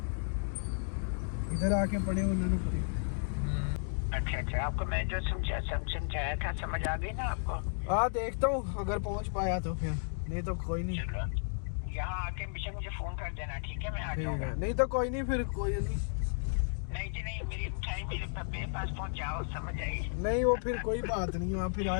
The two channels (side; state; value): right; silent; digital silence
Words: इधर आके पढ़े, उन्होंने पढ़े। अच्छा आपको मैं जो समझाया था, समझ आ गई ना आपको? हाँ देखता हूँ, अगर पहुँच पाया तो फिर, नहीं तो कोई नहीं। यहाँ आके मुझे फोन कर देना, ठीक है? मैं आ ठीक जाऊंगा। है, नहीं तो कोई नहीं, फिर कोई नहीं। नहीं जी नहीं, मेरी मिठाई मेरे पास पहुँच जाओ, समझ आई? नहीं वो फिर कोई बात नहीं, आप फिर